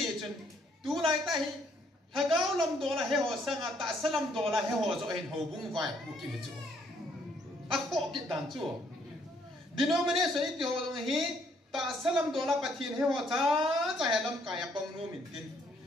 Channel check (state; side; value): normal; both; correlation 0.68